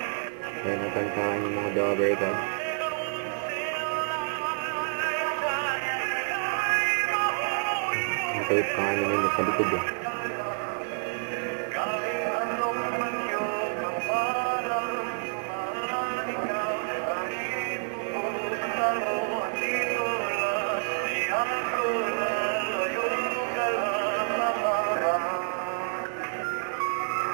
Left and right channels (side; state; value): left; silent; 55 dB below the other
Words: Kaya nakantaan yung mga daughter ka. Ang kait pa nga naman sa likod eh.